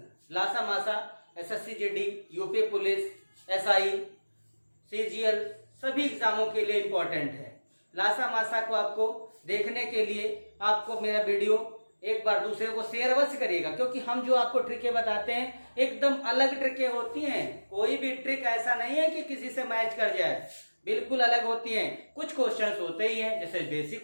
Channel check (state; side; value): inverted; both; correlation -1.00